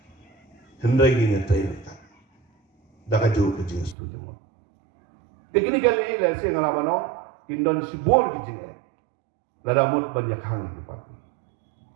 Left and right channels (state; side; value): drops out; left; at 4.0 s